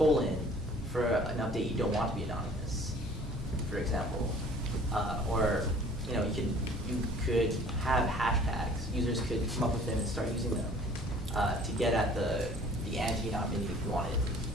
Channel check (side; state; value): both; normal; correlation 0.51